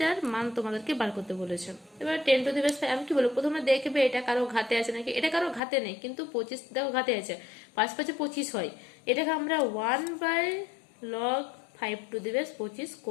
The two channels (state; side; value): drops out; right; at 5.6 s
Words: মান তোমাদেরকে বার করতে বলেছে। এবার 10 টু দি বেস 5 আমি কি বলবো, প্রথমে দেখবে এটা কারো ঘাতে আছে নাকি, এটা কারো ঘাতে নেই কিন্তু 25 দেখো ঘাতে আছে, 5 5 25 হয়, এটাকে আমরা 1 by log 5 to the base 25